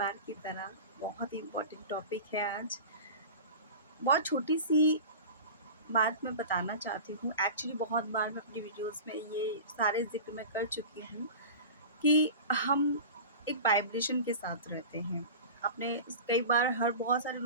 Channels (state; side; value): inverted; both; correlation -0.34